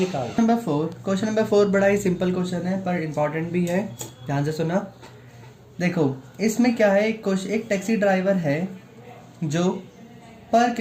क्वेश्चन नंबर 4 बड़ा ही सिंपल क्वेश्चन है पर इंपॉर्टेंट भी है, ध्यान से सुना। देखो इसमें क्या है, एक टैक्सी ड्राइवर है जो पर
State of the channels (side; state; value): both; identical; correlation 1.00